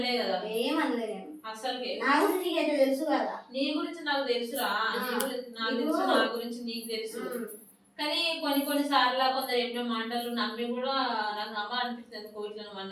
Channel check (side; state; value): both; identical; correlation 1.00